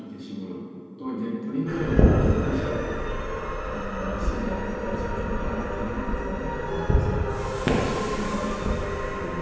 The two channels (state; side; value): identical; both; correlation 1.00